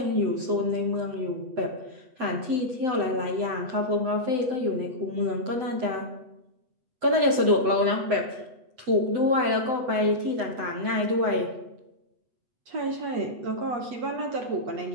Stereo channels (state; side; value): late; left; 7.9 ms